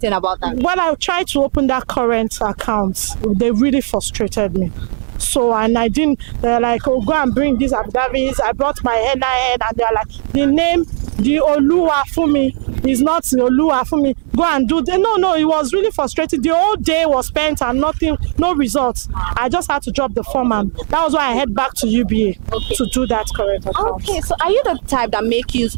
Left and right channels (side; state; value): left; silent; digital silence